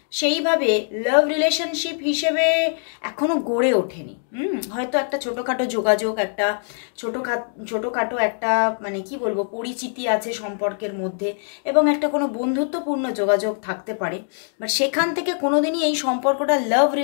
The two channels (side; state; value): right; silent; 64 dB below the other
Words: সেইভাবে লাভ রিলেশনশিপ হিসেবে এখনো গড়ে ওঠেনি। হয়তো একটা ছোটোখাটো যোগাযোগ, একটা ছোটোখাটো একটা কি বলবো পরিচিতি আছে সম্পর্কের মধ্যে, এবং একটা কোনো বন্ধুত্বপূর্ণ যোগাযোগ থাকতে পারে। বাট সেখান থেকে কোনোদিনই এই সম্পর্কটা লাভ